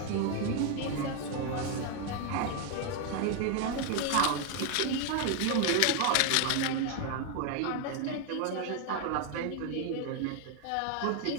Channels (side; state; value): both; different; correlation 0.01